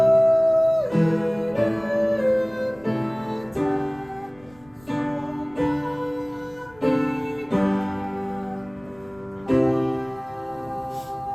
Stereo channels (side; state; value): left; noise; rumble, 27 dB below the sound